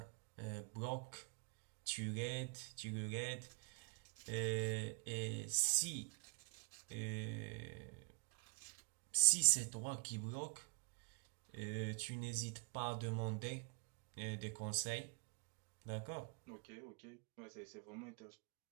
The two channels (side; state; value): left; quieter; 38.5 dB